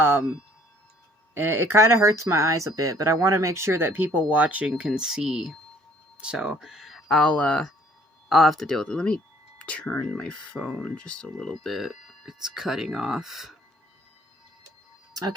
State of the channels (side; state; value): both; normal; correlation 0.59